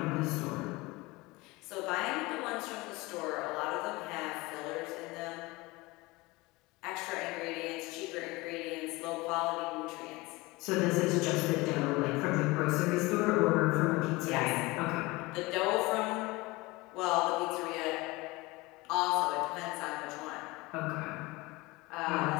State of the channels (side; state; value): right; quieter; 22.5 dB